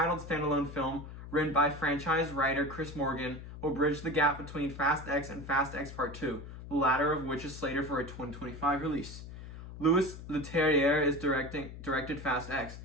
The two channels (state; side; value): noise; left; hum, 12 dB below the sound